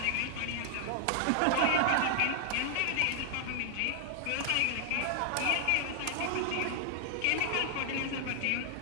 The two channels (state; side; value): different; both; correlation 0.00